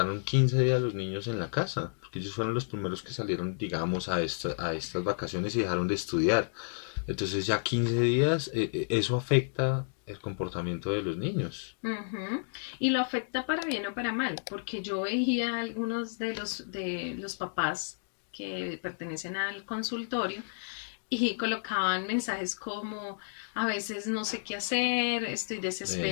15 días los niños en la casa, porque ellos fueron los primeros que salieron, digamos, a estas vacaciones y dejaron de estudiar. Entonces ya 15 días, eso afecta el comportamiento de los niños. Ujú. Y lo afecta para bien o para mal, porque yo veía algunos de los papás que pertenecen al consultorio y colocaban mensajes como a veces no sé qué hacer, estoy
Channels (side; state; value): right; silent; digital silence